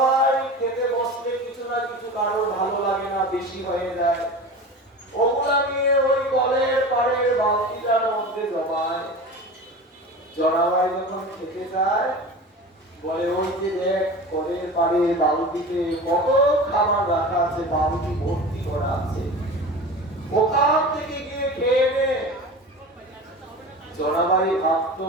খেতে বসলে কিছু না কিছু কারোর ভালো লাগে না, বেশি হয়ে যায়, ওগুলা নিয়ে ওই কলের পাড়ের বালতিটার মধ্যে জমায়। জনাবাই যখন খেতে যায় বলে ওই যে দেখ কলের পাড়ের বালতিতে কত খাবার রাখা আছে, বালতি ভর্তি করা আছে, ওখান থেকে গিয়ে খেয়ে নে। জনাবাই ভাবতো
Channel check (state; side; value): normal; both; correlation 0.33